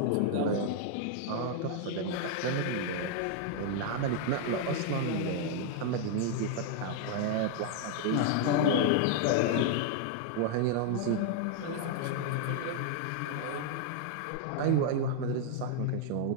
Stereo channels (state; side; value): different; both; correlation 0.00